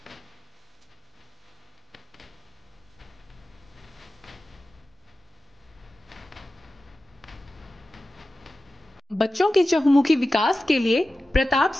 बच्चों के चहुमुखी विकास के लिए प्रताप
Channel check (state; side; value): normal; both; correlation 0.94